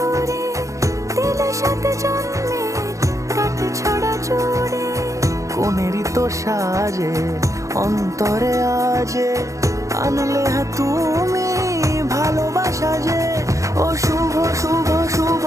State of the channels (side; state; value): left; late; 0.15 ms